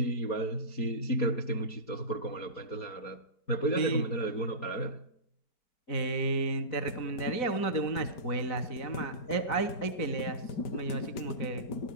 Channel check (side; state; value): right; late; 4.6 ms